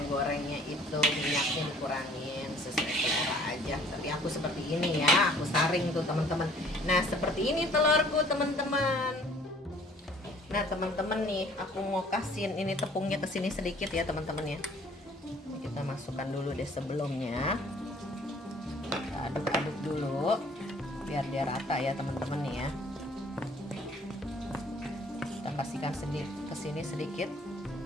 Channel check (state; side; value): normal; both; correlation 0.56